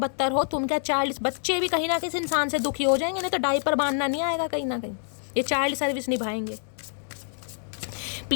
हो, तुम क्या चाइल्ड, बच्चे भी कहीं ना किसी इंसान से दुखी हो जाएंगे, नहीं तो डायपर बांधना नहीं आएगा कहीं ना कहीं, ये चाइल्ड सर्विस निभाएंगे।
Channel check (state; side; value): silent; right; 60 dB below the other